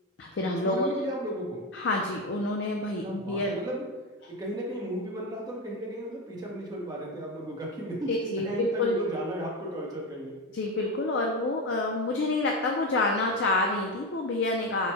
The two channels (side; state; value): both; normal; correlation 0.16